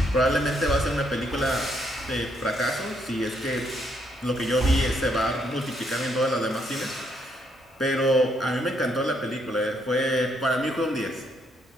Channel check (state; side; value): normal; both; correlation 0.73